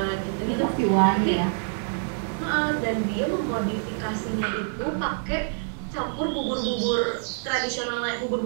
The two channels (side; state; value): left; silent; 61 dB below the other